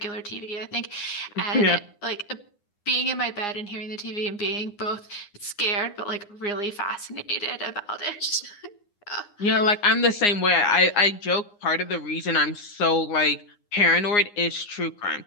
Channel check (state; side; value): late; right; 9.7 ms